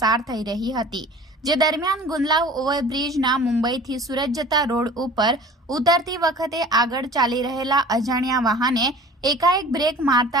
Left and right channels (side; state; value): both; normal; correlation 0.44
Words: થઈ રહી હતી, જે દરમિયાન ગુંદલાવ ઓવરબ્રિજના મુંબઈથી સુરત જતા રોડ ઉપર ઉતરતી વખતે આગળ ચાલી રહેલા અજાણ્યા વાહને એકાએક બ્રેક